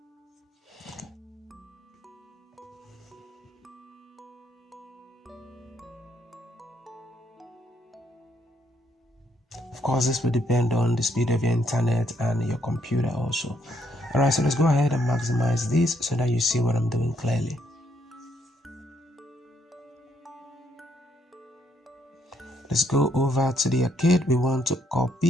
Of course, this will depend on the speed of your internet and your computer also. Alright, so let's go ahead and maximize this so that you see what I'm doing clearly. Let's go over to the arcade. We want to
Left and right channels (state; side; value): normal; both; correlation 0.72